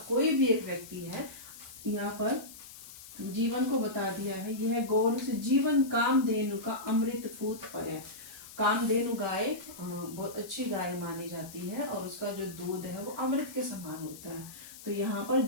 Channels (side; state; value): left; noise; hiss, 16 dB below the sound